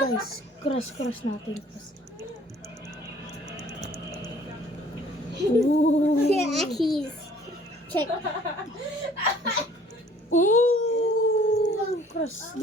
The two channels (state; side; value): normal; both; correlation 0.55